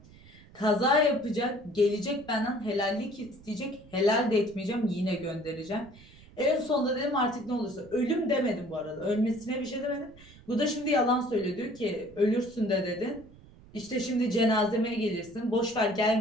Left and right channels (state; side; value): noise; right; rumble, 22 dB below the sound